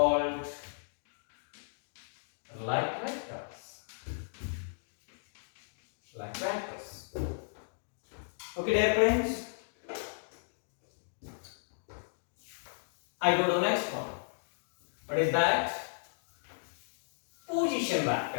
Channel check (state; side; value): silent; right; digital silence